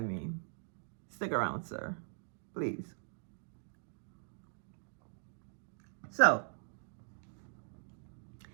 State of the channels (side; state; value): left; silent; digital silence